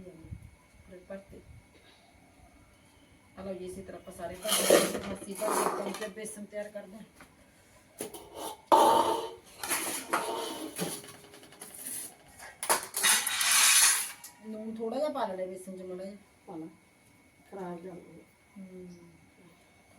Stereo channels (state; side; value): identical; both; correlation 1.00